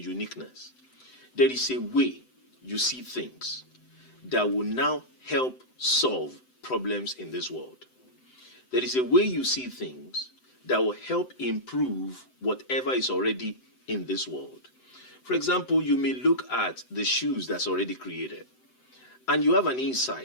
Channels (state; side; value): late; right; 7.8 ms